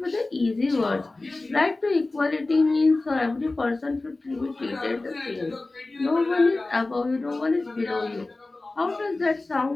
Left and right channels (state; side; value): quieter; right; 3.2 dB